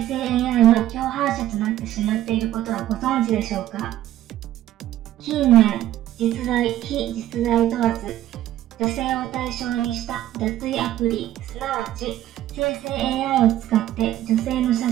AI の共犯者となってしまっていることはご存知でしょうか。近年、実在、非実在問わず、女性を対象にした脱衣アプリ、すなわち生成 AI を使って女性の写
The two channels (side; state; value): left; quieter; 13.3 dB